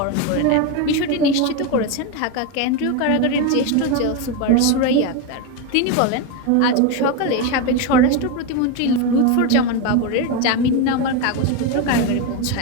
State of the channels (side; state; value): both; different; correlation 0.03